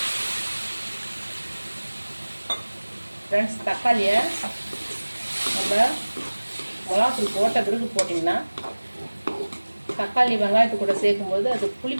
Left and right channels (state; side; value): inverted; both; correlation -1.00